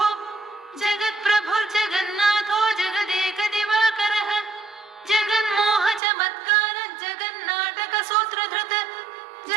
जगत्प्रभुर्जगन्नाथो जगदेकदिवाकरः जगन्मोहचमत्कार जगन्नाटकसूत्रधृत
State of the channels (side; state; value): left; drops out; at 6.0 s